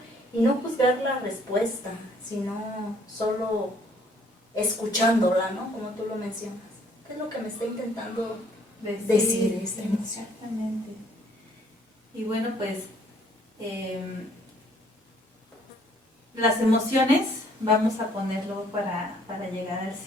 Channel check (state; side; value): normal; both; correlation 0.62